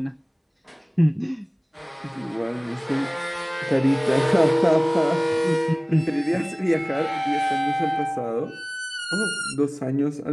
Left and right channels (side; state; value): both; identical; correlation 1.00